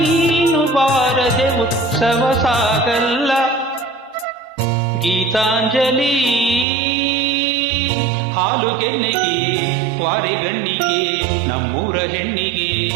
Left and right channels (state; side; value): drops out; left; at 6.7 s